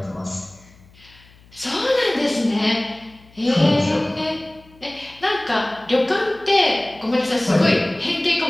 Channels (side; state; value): left; noise; hum, 27 dB below the sound